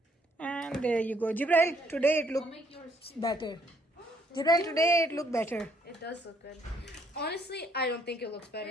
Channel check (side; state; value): both; normal; correlation 0.68